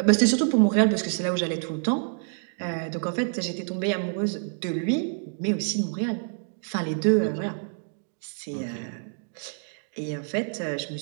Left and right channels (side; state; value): left; silent; digital silence